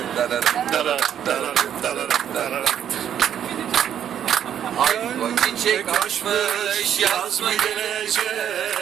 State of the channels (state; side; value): quieter; left; 9.6 dB